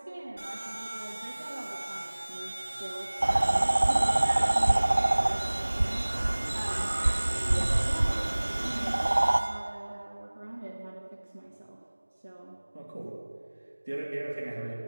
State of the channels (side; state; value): both; inverted; correlation -1.00